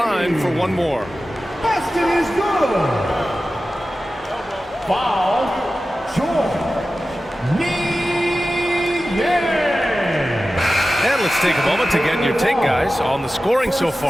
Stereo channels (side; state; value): both; normal; correlation 0.95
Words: for one more. Basket is good. Foul, George Niang. And let's take a moment to get your take, guys, on the scoring so